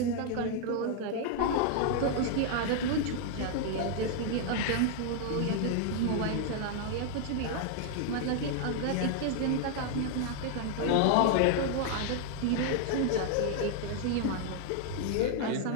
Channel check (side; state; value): both; different; correlation 0.00